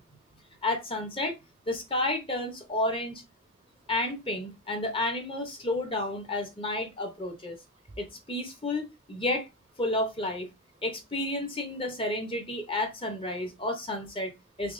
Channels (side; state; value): both; normal; correlation 0.11